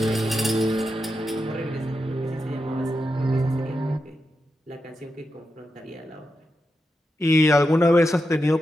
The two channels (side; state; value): both; normal; correlation 0.87